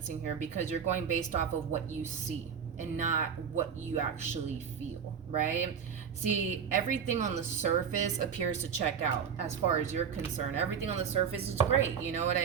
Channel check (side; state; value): left; quieter; 7.3 dB